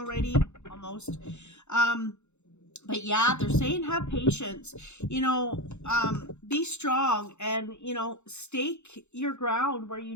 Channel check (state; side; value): late; right; 0.82 ms